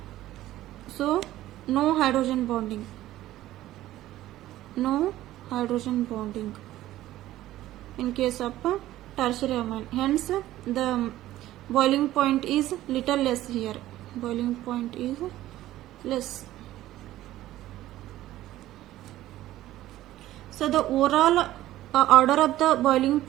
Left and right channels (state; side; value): quieter; left; 14.7 dB